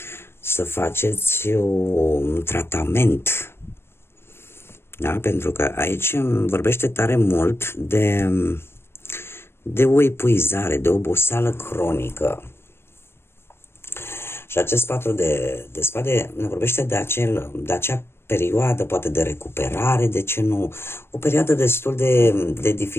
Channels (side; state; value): right; late; 0.12 ms